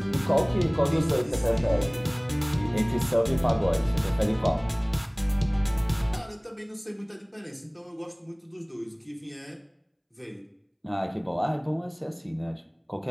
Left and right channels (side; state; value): both; identical; correlation 1.00